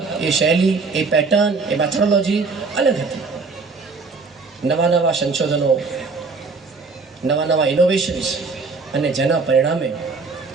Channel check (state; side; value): quieter; left; 4.3 dB